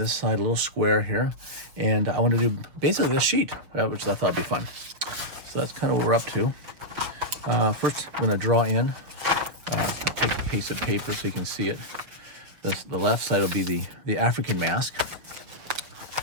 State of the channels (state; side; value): late; left; 6.4 ms